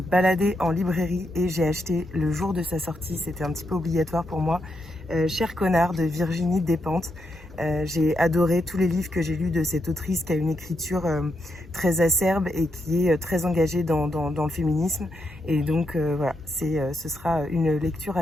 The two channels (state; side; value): normal; both; correlation 0.82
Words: balader en librairie et j'ai acheté le jour de sa sortie. C'était un petit peu obligatoire pour moi. Cher connard de Virginie Despentes. J'ai adoré tous les livres que j'ai lus de cette autrice qui a une écriture très acerbe et qui est très engagée dans le féminisme. Voilà, ce sera une lecture